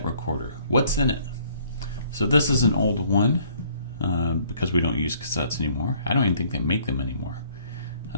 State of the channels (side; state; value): both; inverted; correlation -0.60